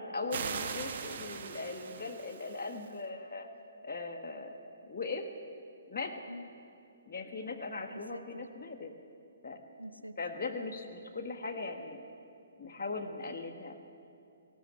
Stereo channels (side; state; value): both; inverted; correlation -0.57